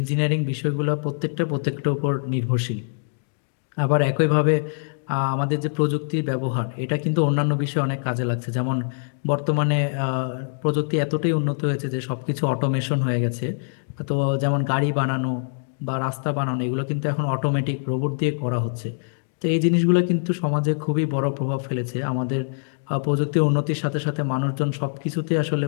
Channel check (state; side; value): silent; right; digital silence